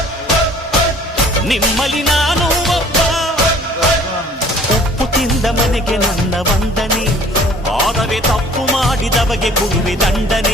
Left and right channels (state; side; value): normal; both; correlation 0.52